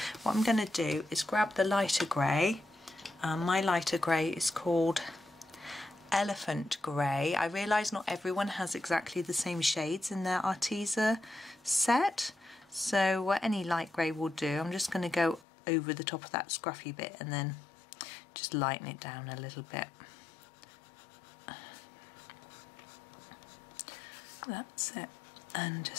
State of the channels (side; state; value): right; drops out; at 15.5 s